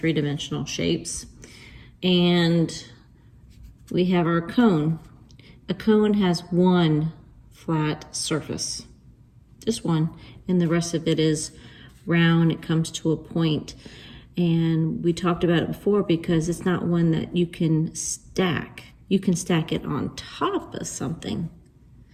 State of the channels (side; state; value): both; identical; correlation 1.00